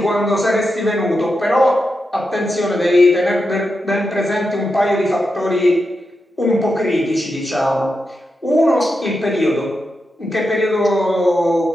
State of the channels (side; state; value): both; normal; correlation 0.88